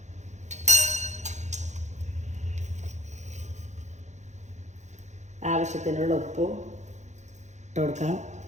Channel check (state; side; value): late; left; 0.34 ms